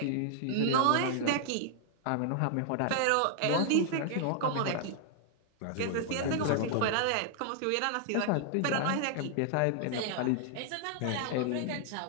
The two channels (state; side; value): different; both; correlation 0.00